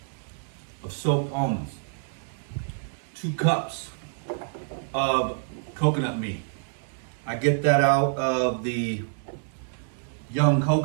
of soaked almonds. 2 cups of coconut meat. I get that out of the young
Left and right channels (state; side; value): silent; left; 60 dB below the other